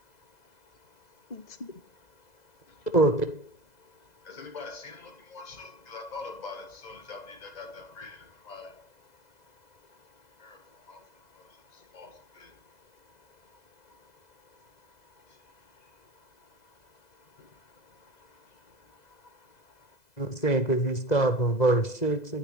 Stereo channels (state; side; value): late; right; 2.0 ms